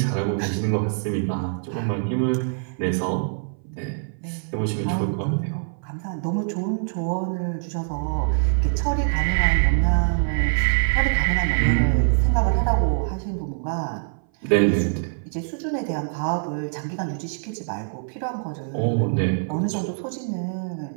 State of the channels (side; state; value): left; silent; 58 dB below the other